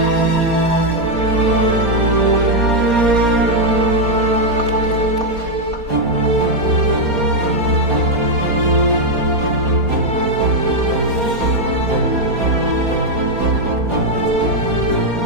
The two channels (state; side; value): late; left; 4.2 ms